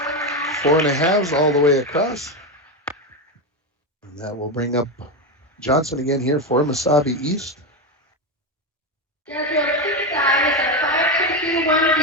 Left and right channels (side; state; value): both; normal; correlation 0.12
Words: 4.5s all the way across. And that will bring up Johnson again here for Mesabi East. Jezreel's 6th dive is a